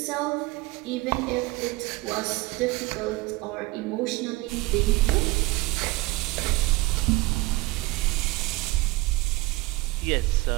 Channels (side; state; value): left; quieter; 21.7 dB